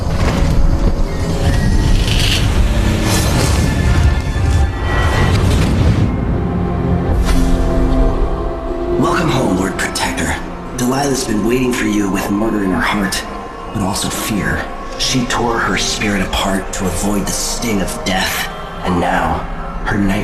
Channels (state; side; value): identical; both; correlation 1.00